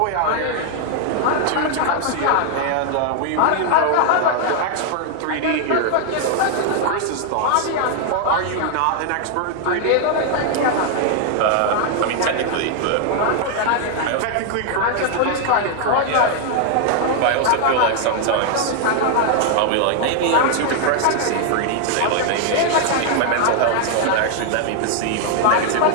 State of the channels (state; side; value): different; both; correlation 0.00